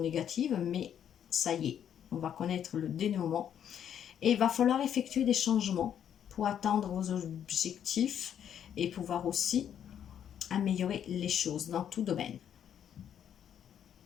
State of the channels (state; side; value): quieter; right; 9.3 dB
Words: négative, mais ça y est, on va connaître le dénouement. Et il va falloir effectuer des changements pour atteindre vos objectifs et pouvoir aussi améliorer les choses dans tout domaine.